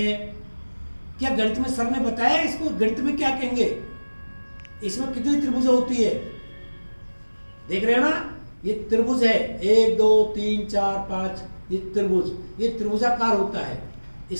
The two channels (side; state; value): both; inverted; correlation -1.00